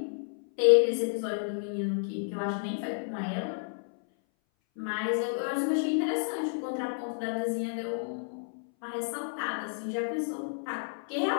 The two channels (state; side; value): silent; right; 57 dB below the other